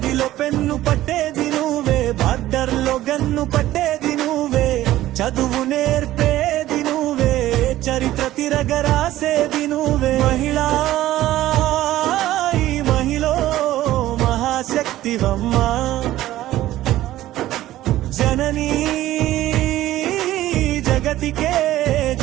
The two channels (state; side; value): quieter; left; 14.8 dB